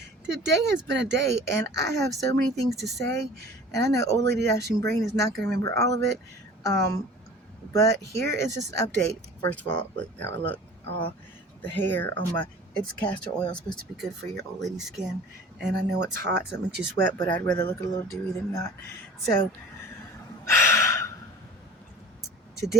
Today has been a day, and I have so many things to say, and I know Old Lady Dashing Brain is not going to remember all of it. Um, but here is just an update. First of all, look how I look. All the hair on my it's castor oil, supposed to be good for your old lady skin, and I know it's hot, so it makes you sweat. But I'd rather look a little dewy than not. So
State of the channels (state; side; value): normal; both; correlation 0.43